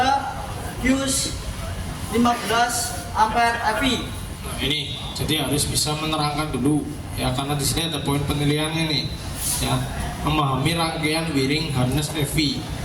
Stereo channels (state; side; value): identical; both; correlation 1.00